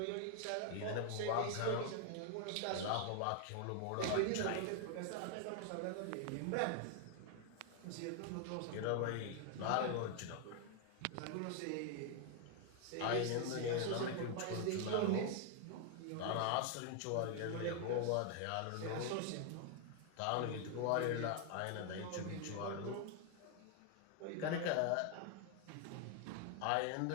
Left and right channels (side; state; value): both; different; correlation 0.00